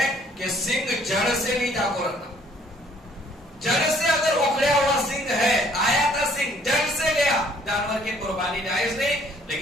کہ سنگ جڑ سے نہیں جا کو رکھنا، جڑ سے اگر اکھڑیا ہوا سنگ ہے، آیا تھا سنگ، جڑ سے گیا، جانور کی قربانی جائز نہیں،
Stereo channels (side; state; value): both; normal; correlation 0.60